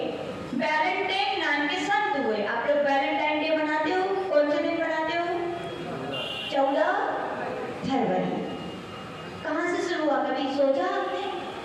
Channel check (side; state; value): both; identical; correlation 1.00